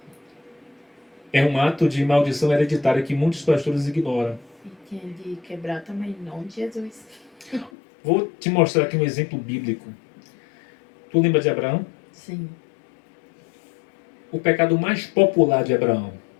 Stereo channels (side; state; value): right; drops out; at 7.7 s